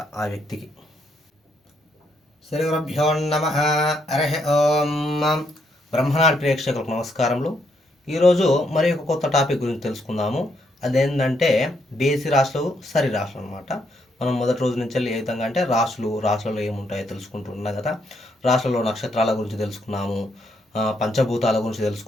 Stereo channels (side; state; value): both; normal; correlation 0.74